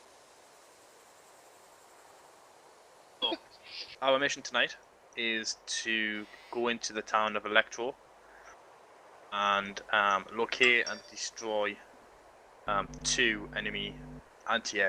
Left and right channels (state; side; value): identical; both; correlation 1.00